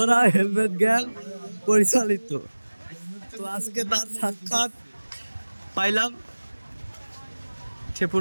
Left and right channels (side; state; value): both; inverted; correlation -1.00